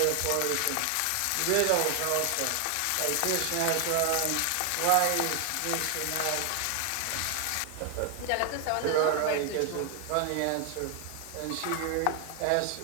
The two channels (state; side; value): different; both; correlation 0.00